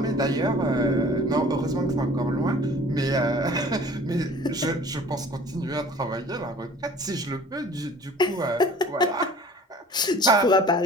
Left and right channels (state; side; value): normal; both; correlation 0.48